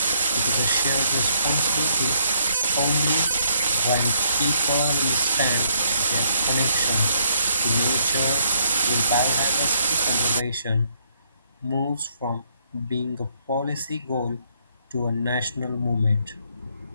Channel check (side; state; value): both; inverted; correlation -0.71